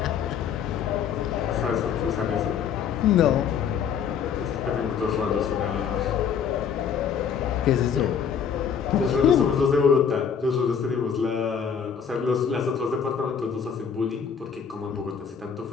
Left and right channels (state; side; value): quieter; right; 7.3 dB